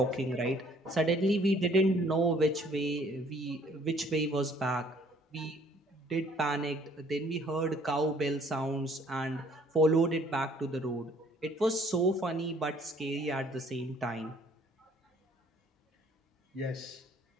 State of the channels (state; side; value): normal; both; correlation 0.60